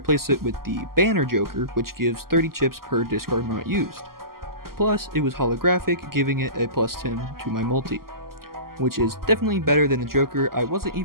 it with the banner joker, which gives 30 chips per discard not used. Plus, it was holographic, giving it a plus 10 to my multi, which is definitely better than the joker I wasn't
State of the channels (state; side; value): late; left; 0.92 ms